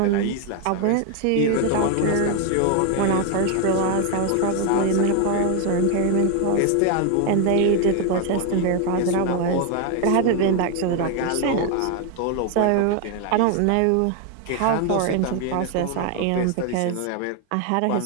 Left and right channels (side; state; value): both; different; correlation 0.01